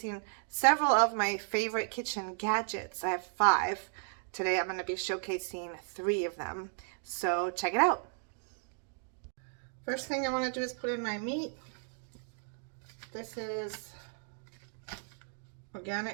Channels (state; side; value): silent; left; 55 dB below the other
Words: several of my favorite kitchen gadgets. I have 5. Today I'm going to be showcasing 3 of them. So check it out. First thing I want to do is put in my meat. This is